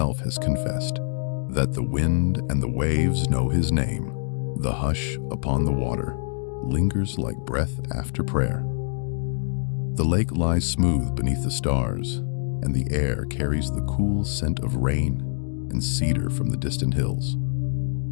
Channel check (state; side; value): silent; right; digital silence